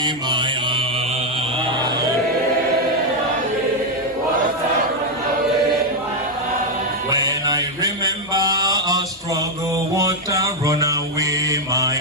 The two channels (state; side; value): normal; both; correlation 0.02